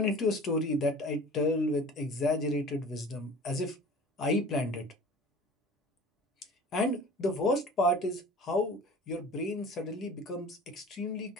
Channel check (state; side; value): normal; both; correlation 0.42